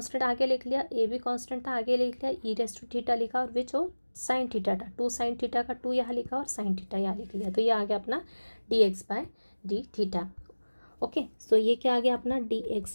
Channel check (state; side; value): inverted; both; correlation -1.00